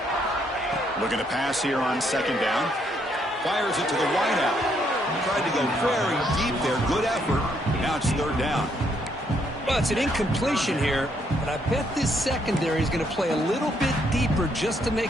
Looking to pass here on second down. Fires it to the wideout. Tried to go very deep there. Good effort. Now it's third down. Well, it's an incompletion here, but I bet this secondary is going to play a little bit deeper just to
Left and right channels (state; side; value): normal; both; correlation 0.72